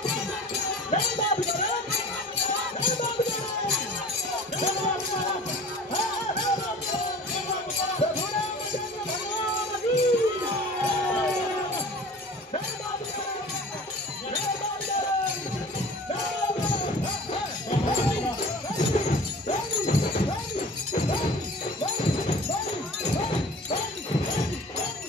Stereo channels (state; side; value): normal; both; correlation 0.43